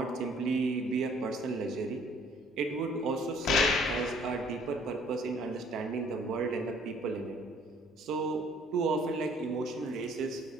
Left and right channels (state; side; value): normal; both; correlation 0.58